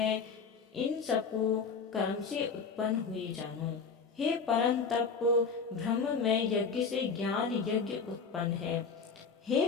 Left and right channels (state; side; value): quieter; right; 5.3 dB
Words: इन सबको कर्म से उत्पन्न हुए जानो। हे परम तप, ब्रह्म में यज्ञ से ज्ञान यज्ञ उत्पन्न है। हे